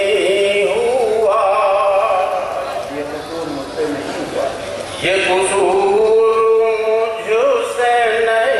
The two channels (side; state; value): both; identical; correlation 1.00